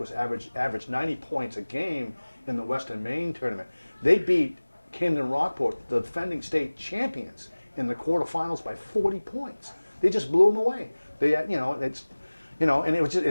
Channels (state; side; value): inverted; both; correlation -1.00